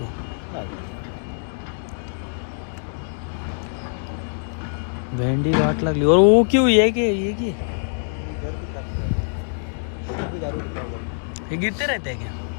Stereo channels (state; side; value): silent; right; digital silence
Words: भेंडी वाट लागली. और वो क्यों ये गिरते रहते हैं क्या?